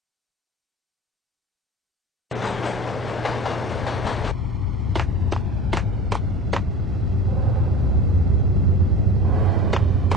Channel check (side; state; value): both; normal; correlation 0.35